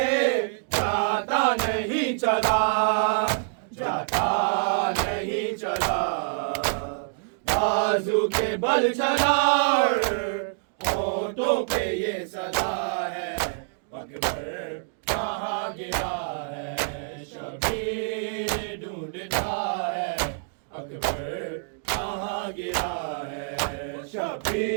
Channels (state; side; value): silent; left; digital silence